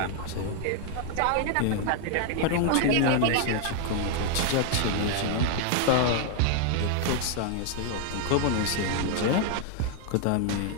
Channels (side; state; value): both; different; correlation 0.00